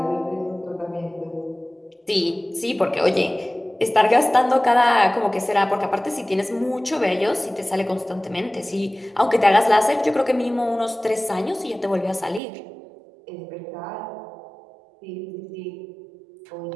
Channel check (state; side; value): drops out; left; at 12.4 s